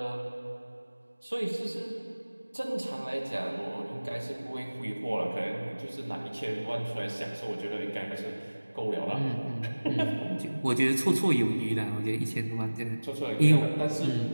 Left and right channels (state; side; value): inverted; both; correlation -1.00